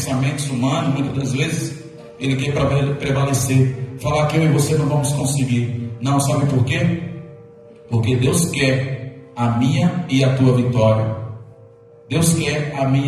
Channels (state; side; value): identical; both; correlation 1.00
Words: humanos, muitas das vezes, ele quer prevalecer. Falar que eu e você não vamos conseguir. Não, sabe por quê? Porque Deus quer a minha e a tua vitória. Deus quer a